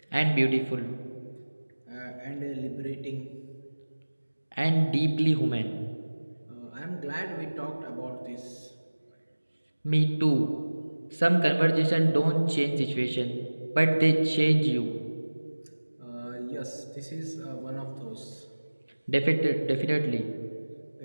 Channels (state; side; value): inverted; both; correlation -1.00